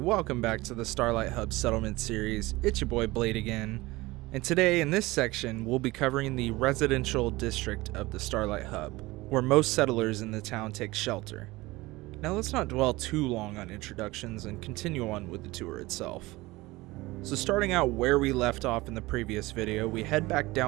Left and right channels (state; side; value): quieter; left; 20.4 dB